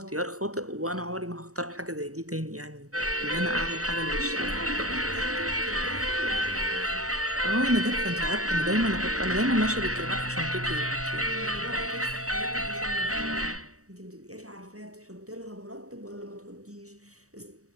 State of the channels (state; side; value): late; left; 0.65 ms